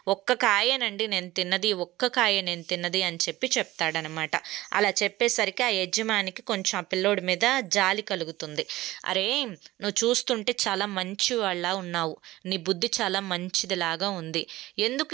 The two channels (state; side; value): quieter; left; 17.3 dB